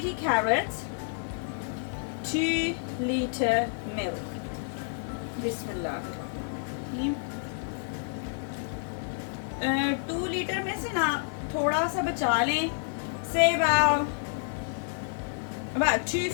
carrots, 2 liter milk. Bismillah. 2 litre में से ना थोड़ा सा बचा लें, say about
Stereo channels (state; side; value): silent; right; digital silence